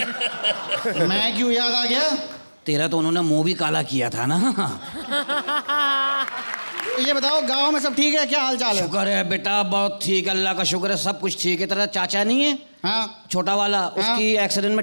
मैं क्यों याद आ गया? तेरा तो उन्होंने मुंह भी काला किया था ना। ये बताओ गांव में सब ठीक है? क्या हाल चाल है? शुक्र है बेटा, बहुत ठीक, अल्लाह का शुक्र है, सब कुछ ठीक है। तेरा चाचा नहीं है? हाँ छोटा वाला, उसकी एक्सीडेंट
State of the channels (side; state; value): both; inverted; correlation -1.00